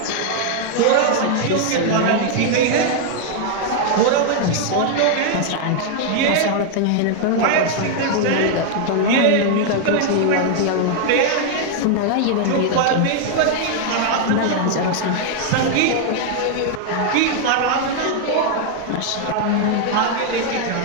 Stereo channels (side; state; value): both; different; correlation 0.00